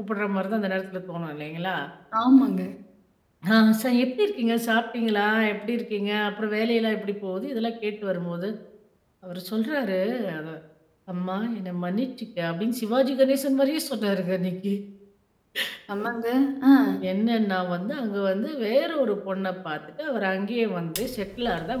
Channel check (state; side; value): identical; both; correlation 1.00